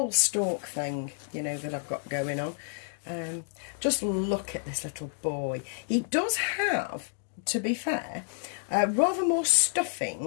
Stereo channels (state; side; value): silent; right; 58 dB below the other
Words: stork thing, you know, that I've got going on. Just look at this little boy. He does have, to be fair, rather more